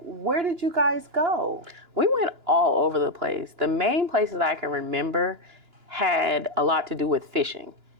where did you guys go? We went all over the place. The main places I can remember had a lot to do with fishing.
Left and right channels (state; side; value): late; left; 2.9 ms